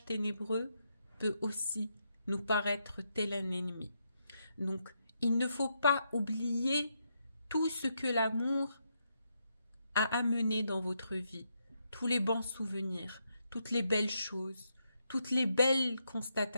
ténébreux peut aussi nous paraître tel un ennemi. Donc, il ne faut pas oublier tout ce que l'amour a amené dans votre vie, tous les bons souvenirs, toutes les belles choses, toutes les belles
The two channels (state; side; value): inverted; both; correlation -0.80